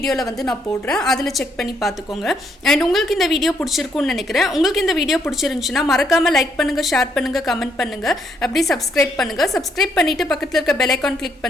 வந்து நான் போடுறேன், அதில் செக் பண்ணி பார்த்துக்கோங்க. அண்ட் உங்களுக்கு இந்த வீடியோ பிடிச்சிருக்குன்னு நினைக்கிறேன். உங்களுக்கு இந்த வீடியோ பிடிச்சிருந்துச்சுன்னா மறக்காமல் லைக் பண்ணுங்கள், ஷேர் பண்ணுங்கள், கமெண்ட் பண்ணுங்கள், அப்படி சப்ஸ்கிரைப் பண்ணுங்கள். சப்ஸ்கிரைப் பண்ணிவிட்டு பக்கத்தில் இருக்க பெல் ஐக்கான் கிளிக்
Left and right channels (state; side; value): normal; both; correlation 0.73